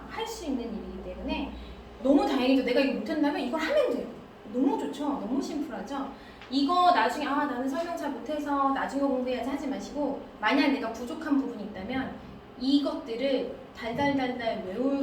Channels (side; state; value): both; identical; correlation 1.00